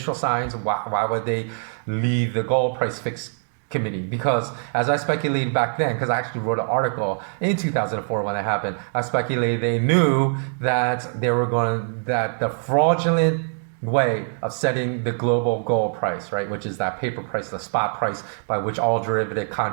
signs. Why would they leave the Gold Price Fix Committee? Because as I speculated back then, because I actually wrote an article in 2004 when it happened, I speculated they knew that that the fraudulent way of setting the global gold price, right, which is that paper price, the spot price by which all derivative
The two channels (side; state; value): left; silent; 60 dB below the other